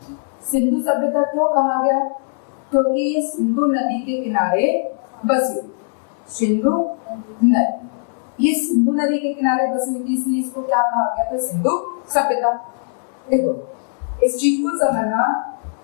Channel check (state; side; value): silent; right; 66 dB below the other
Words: सिंधु सभ्यता क्यों कहा गया, क्योंकि ये सिंधु नदी के किनारे बसी, सिंधु नदी, ये सिंधु नदी के किनारे बसी हुई थी, इसलिए इसको क्या कहा गया था, सिंधु सभ्यता। देखो इस चीज को समझना,